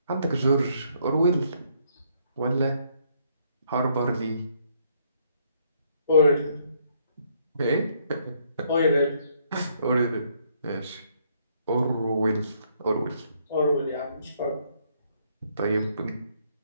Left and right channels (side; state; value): both; inverted; correlation -0.69